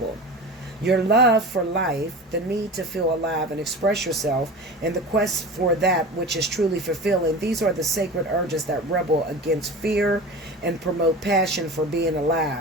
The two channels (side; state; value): both; normal; correlation 0.33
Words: Your love for life, the need to feel alive and express yourself, and the quest for that which is truly fulfilling, these are the sacred urges that rebel against fear and promote passion for being